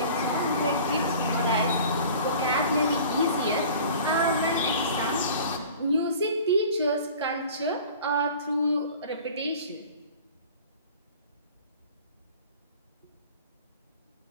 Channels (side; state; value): both; inverted; correlation -0.44